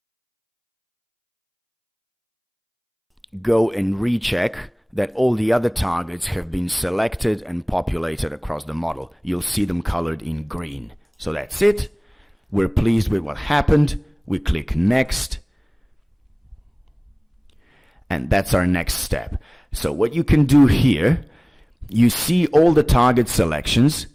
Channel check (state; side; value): identical; both; correlation 1.00